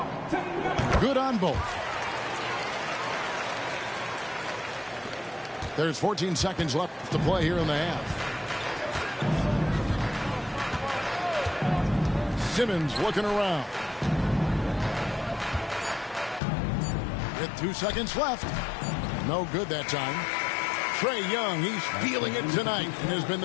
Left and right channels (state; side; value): drops out; right; at 16.4 s